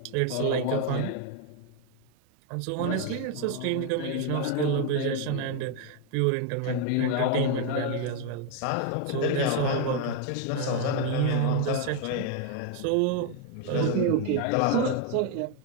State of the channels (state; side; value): different; both; correlation 0.01